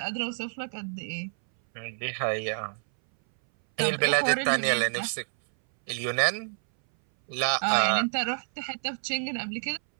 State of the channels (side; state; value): left; silent; 59 dB below the other